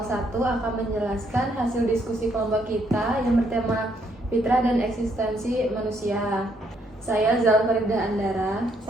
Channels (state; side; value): normal; both; correlation 0.72